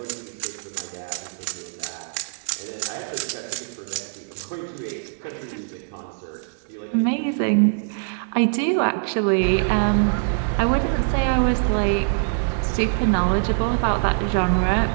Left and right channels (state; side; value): silent; left; digital silence